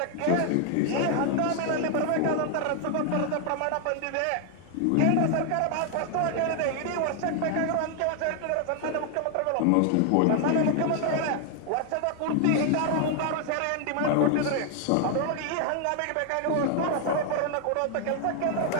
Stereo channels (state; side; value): different; both; correlation 0.00